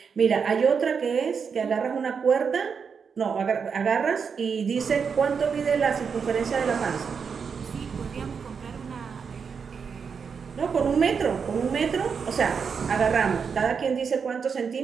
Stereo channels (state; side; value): quieter; left; 6.1 dB